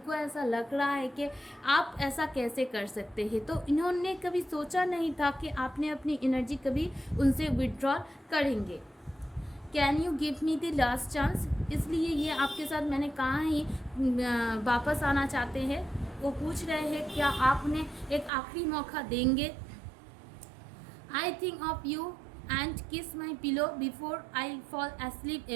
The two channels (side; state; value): left; drops out; at 18.3 s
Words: ऐसा लग रहा है कि आप ऐसा कैसे कर सकते हैं। तो इन्होंने कभी सोचा नहीं था कि आपने अपनी एनर्जी कभी उनसे विड्रॉल करेंगे। Can you give me the last chance, इसलिए ये आपके साथ मैंने कहा ही वापस आना चाहते हैं। वो पूछ रहे हैं क्या आप उन्हें एक आखिरी मौका देंगे। I think of you and kiss my pillow before I fall asleep